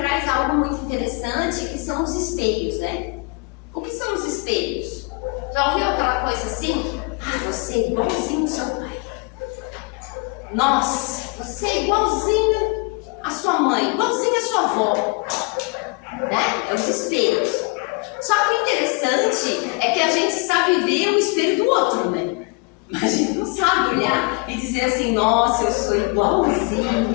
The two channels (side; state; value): right; quieter; 29.6 dB